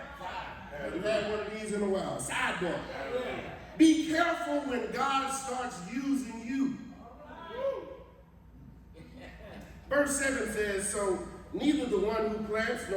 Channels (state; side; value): identical; both; correlation 1.00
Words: Haven't had one of these in a while. Sidebar. Be careful when God starts using you. Verse 7 says, so neither the one who plants